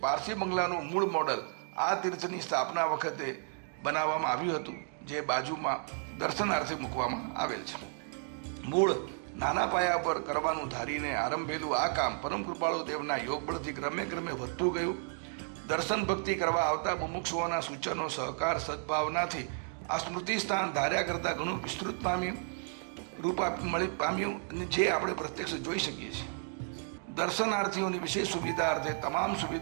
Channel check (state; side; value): silent; left; 56 dB below the other